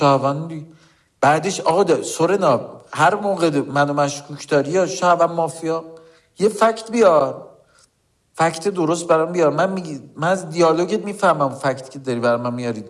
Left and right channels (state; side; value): identical; both; correlation 1.00